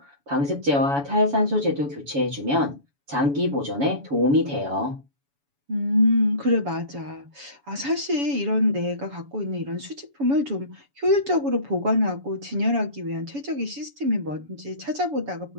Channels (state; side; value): late; left; 7.1 ms